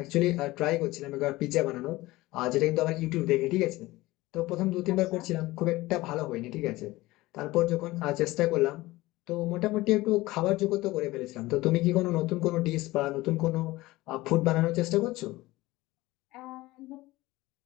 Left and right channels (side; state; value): right; quieter; 19.1 dB